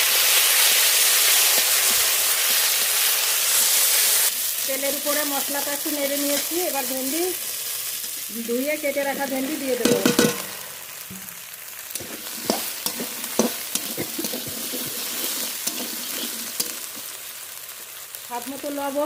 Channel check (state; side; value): identical; both; correlation 1.00